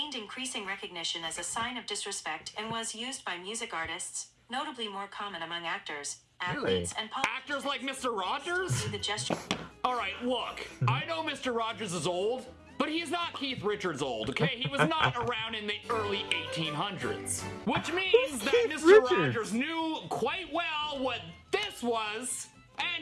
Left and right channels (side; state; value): both; identical; correlation 1.00